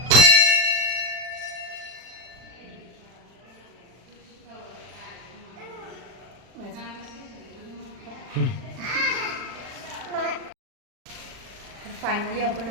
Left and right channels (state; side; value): late; left; 40 ms